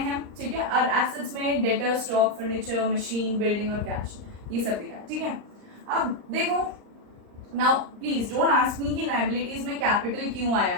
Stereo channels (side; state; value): left; late; 39 ms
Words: ठीक है। और एसेट्स में debtor, stock, furniture, machine, building और कैश, ये सब दिखाया, ठीक है। अब देखो, now please don't ask me कि लायबिलिटीज में कैपिटल क्यों आया